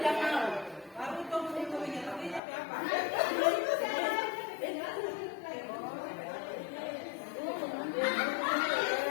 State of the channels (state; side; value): drops out; right; at 2.4 s